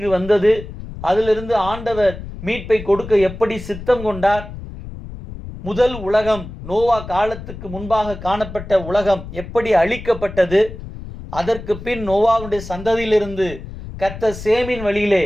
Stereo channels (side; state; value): left; noise; rumble, 12 dB below the sound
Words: வந்தது, அதிலிருந்து ஆண்டவர் மீட்பை கொடுக்க எப்படி சித்தம் கொண்டார், முதல் உலகம் நோவா காலத்துக்கு முன்பாக காணப்பட்ட உலகம் எப்படி அழிக்கப்பட்டது, அதற்கு பின் நோவாவுடைய சந்ததியிலிருந்து கர்த்தர் சேமின் வழியிலே